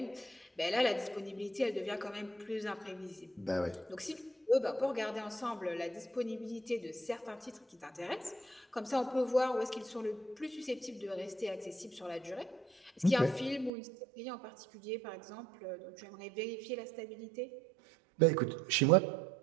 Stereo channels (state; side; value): drops out; left; at 13.7 s